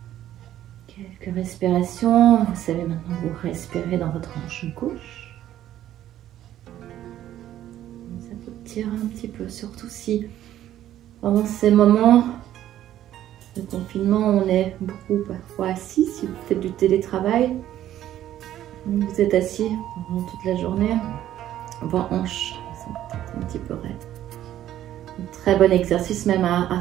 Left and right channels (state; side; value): quieter; left; 12.4 dB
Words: Quelques respirations. Vous savez maintenant vous respirez dans votre hanche gauche. Ça peut tirer un petit peu, surtout si pendant ces moments de confinement, on est beaucoup parfois assis. Si vous faites du télétravail, vous êtes assis pendant toute la journée, vos hanches sont peut-être un petit peu raides. Un très bon exercice même à